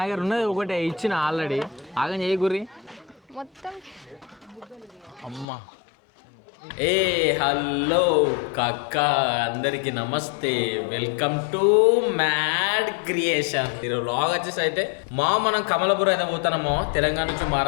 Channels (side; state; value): right; drops out; at 5.5 s